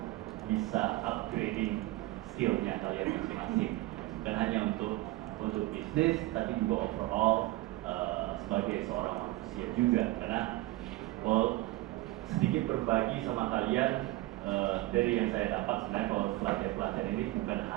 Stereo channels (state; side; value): quieter; left; 18.5 dB